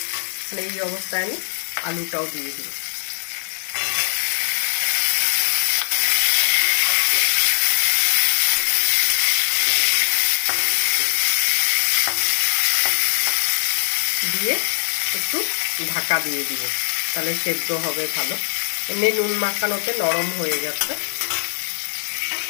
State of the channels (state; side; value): silent; right; digital silence